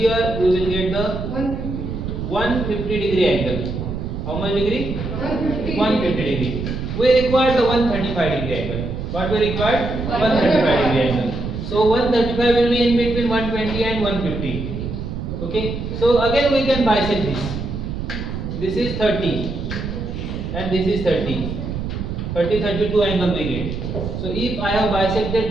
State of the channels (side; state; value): right; noise; rumble, 5 dB below the sound